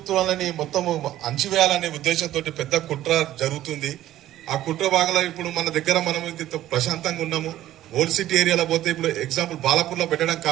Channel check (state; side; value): quieter; left; 13.6 dB